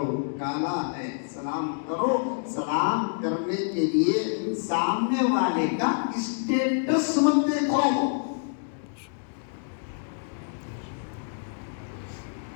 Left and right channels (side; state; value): right; silent; digital silence